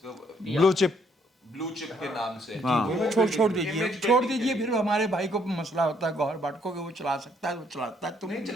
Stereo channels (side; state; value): both; normal; correlation 0.68